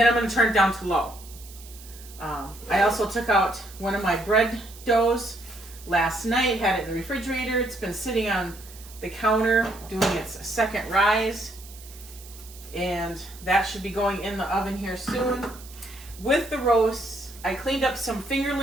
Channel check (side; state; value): right; noise; hiss, 19 dB below the sound